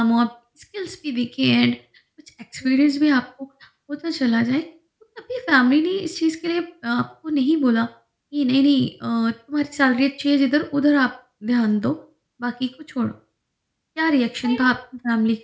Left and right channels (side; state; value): both; identical; correlation 1.00